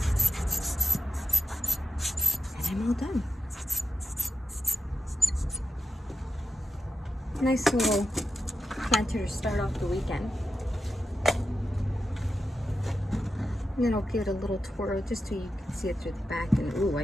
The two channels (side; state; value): both; normal; correlation 0.92